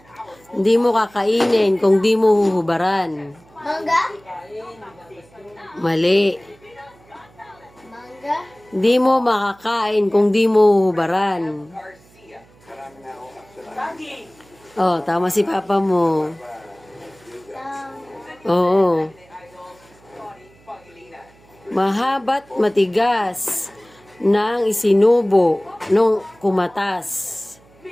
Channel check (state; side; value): noise; right; hum, 28 dB below the sound